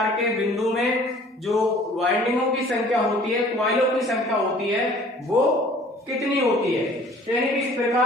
के बिंदु में जो वाइंडिंगों की संख्या होती है, कॉइलों की संख्या होती है, वो कितनी होती है। तो यानी कि इस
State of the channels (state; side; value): normal; both; correlation 0.51